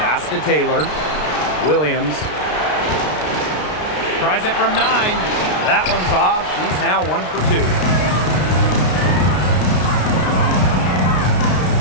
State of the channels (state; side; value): late; right; 33 ms